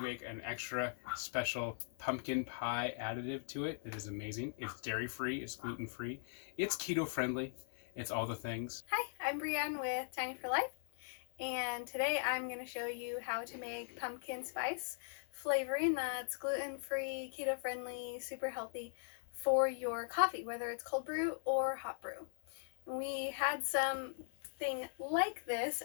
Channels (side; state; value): right; silent; 51 dB below the other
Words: an extra special pumpkin pie additive to it. It is amazing. It's dairy-free, it's gluten-free, it's keto-friendly, it's all the things. Hi, I'm Brianne with Tiny for Life, and today I'm going to show you how to make pumpkin spice flavoring that's gluten-free, keto-friendly, super healthy for your coffee, whether it's cold brew or hot brew. We had something like this